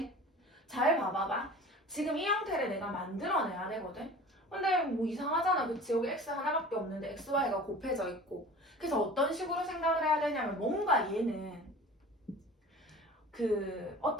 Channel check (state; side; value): normal; both; correlation 0.41